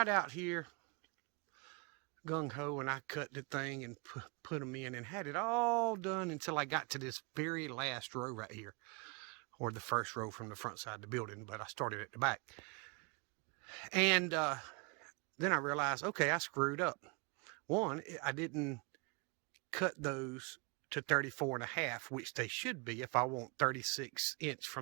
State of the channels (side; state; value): left; quieter; 32.0 dB